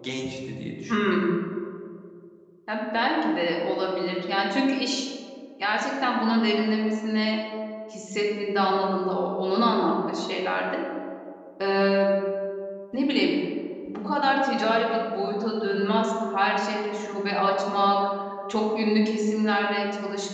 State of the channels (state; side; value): identical; both; correlation 1.00